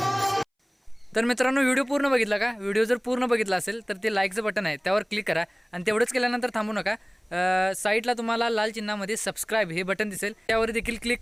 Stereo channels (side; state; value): both; identical; correlation 1.00